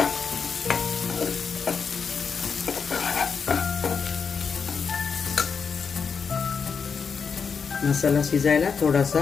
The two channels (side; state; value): right; quieter; 5.9 dB